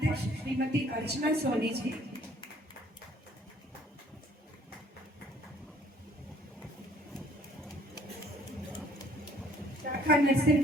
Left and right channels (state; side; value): normal; both; correlation 0.59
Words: श्रीमती अर्चना सोनी जी। शाखा